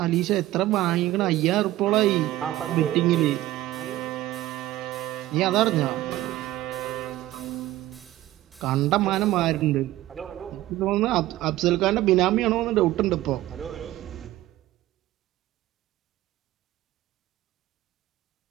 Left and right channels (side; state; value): left; quieter; 15.7 dB